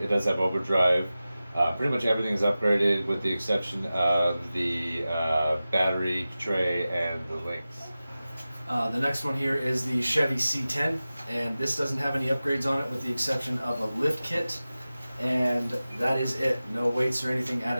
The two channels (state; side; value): inverted; both; correlation -0.95